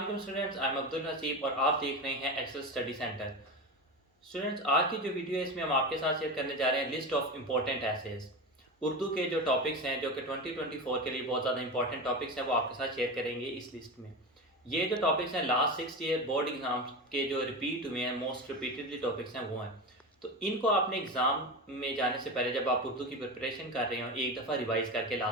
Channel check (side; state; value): both; normal; correlation 0.23